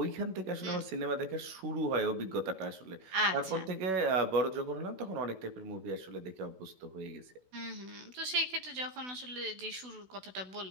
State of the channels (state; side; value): late; left; 16 ms